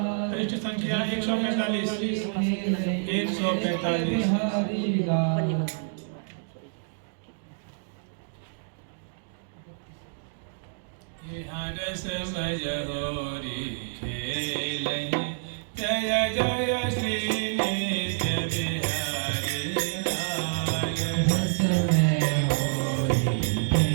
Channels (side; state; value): left; silent; digital silence